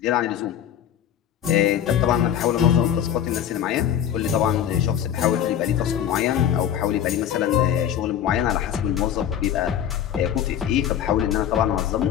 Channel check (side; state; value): right; quieter; 10.0 dB